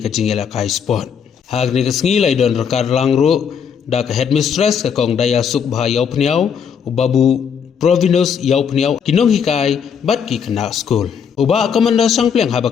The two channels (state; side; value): quieter; right; 7.2 dB